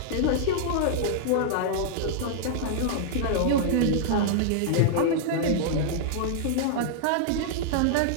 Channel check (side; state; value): both; different; correlation -0.01